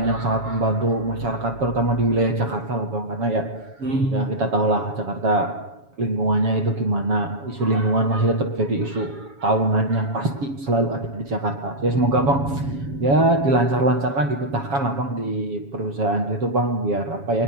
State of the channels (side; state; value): left; late; 7.2 ms